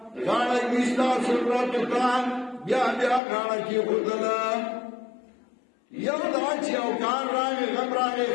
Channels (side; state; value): right; drops out; at 3.2 s